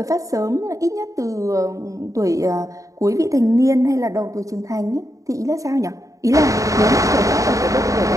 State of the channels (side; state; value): left; late; 0.16 ms